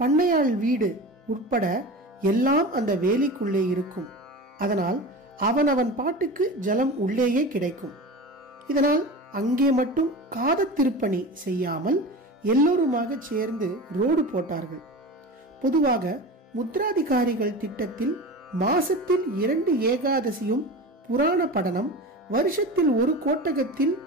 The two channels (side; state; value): both; normal; correlation 0.31